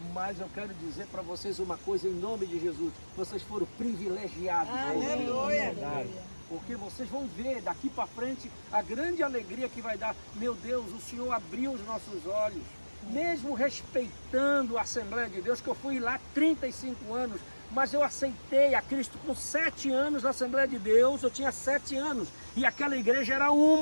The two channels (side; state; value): both; inverted; correlation -1.00